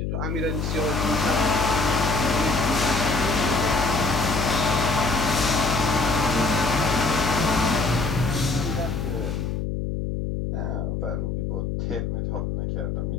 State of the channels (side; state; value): left; noise; hum, 2 dB below the sound